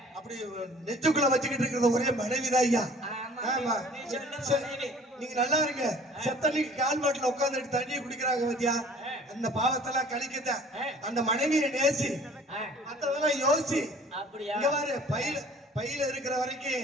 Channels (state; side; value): normal; both; correlation 0.50